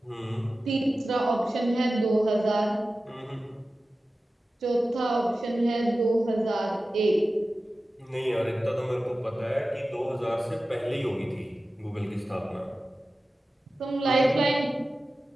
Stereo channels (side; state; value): both; normal; correlation 0.95